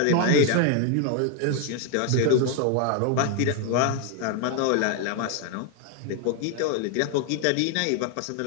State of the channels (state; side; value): different; both; correlation 0.01